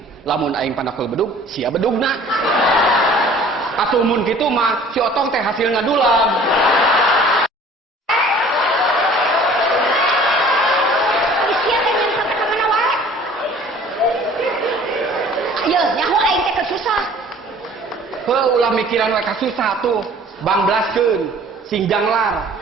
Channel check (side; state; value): both; normal; correlation 0.50